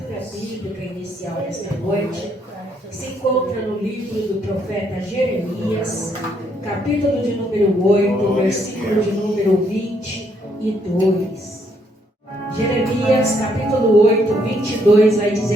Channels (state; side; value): normal; both; correlation 0.71